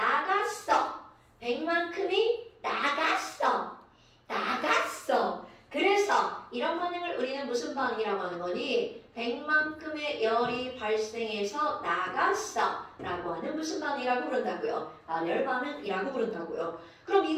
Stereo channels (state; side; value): identical; both; correlation 1.00